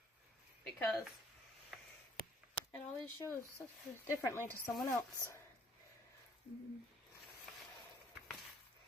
Because it always shows differently to someone else.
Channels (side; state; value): both; normal; correlation 0.61